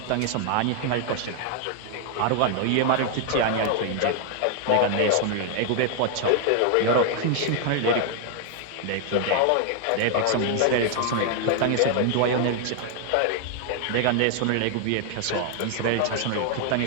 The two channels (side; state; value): both; different; correlation 0.00